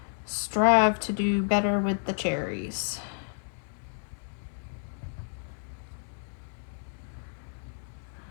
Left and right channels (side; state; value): right; silent; digital silence